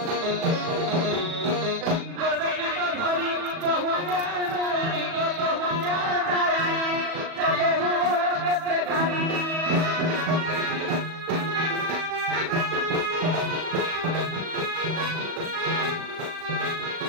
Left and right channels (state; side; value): late; left; 37 ms